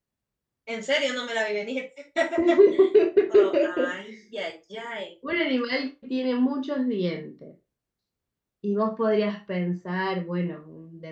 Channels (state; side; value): identical; both; correlation 1.00